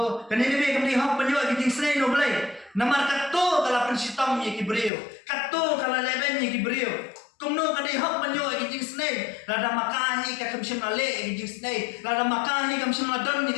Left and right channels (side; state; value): right; drops out; at 4.9 s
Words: ini be kamdai hok banyo kiting snai no blay. Namar katto kala pensitam ye kibrio, katto kala leben ye kibrio. Kumno kadai hok banyo kiting snai, lada makahi ka kamsim ale kiting snai, lada makahi kamsim ladon ni